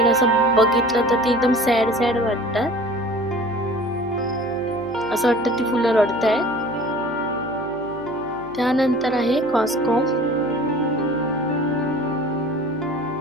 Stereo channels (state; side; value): noise; right; hum, 21 dB below the sound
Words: असं बघितलं तर ती एकदम सॅड सॅड वाटतात. असं वाटतं ती फुलं रडतायत. त्यानंतर आहे कॉस्कॉम.